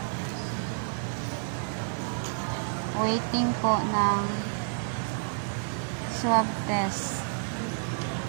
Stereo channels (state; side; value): silent; left; digital silence